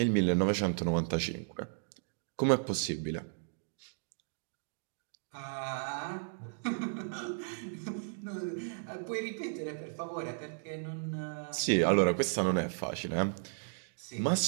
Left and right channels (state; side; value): silent; left; digital silence